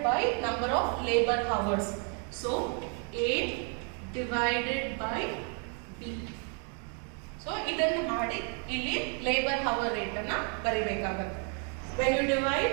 by number of labor hours. So A divided by B. So idannu ಮಾಡಿ ಇಲ್ಲಿ labor hour rate ಅನ್ನು ಬರಿಬೇಕಾಗುತ್ತೆ. When you divide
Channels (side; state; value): left; quieter; 37.7 dB